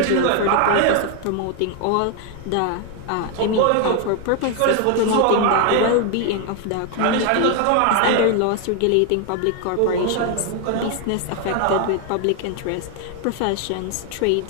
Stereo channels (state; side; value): different; both; correlation 0.01